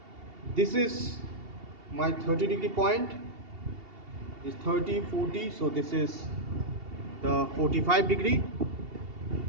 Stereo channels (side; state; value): left; late; 2.7 ms